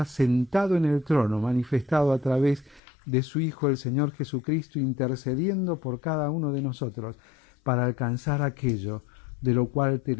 sentado en el trono, manifestado a través de su Hijo el Señor Jesucristo, intercediendo por cada uno de nosotros para alcanzar aquello de lo cual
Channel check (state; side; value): drops out; right; at 2.8 s